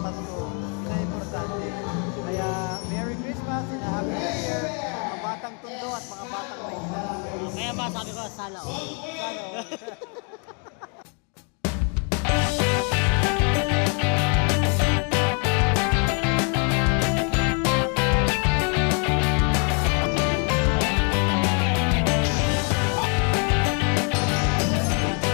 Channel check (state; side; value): quieter; right; 38.5 dB